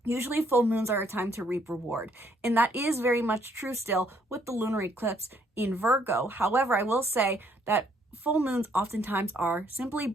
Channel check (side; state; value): both; normal; correlation 0.68